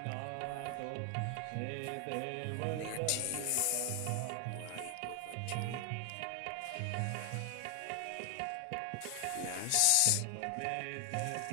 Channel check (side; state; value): both; different; correlation 0.00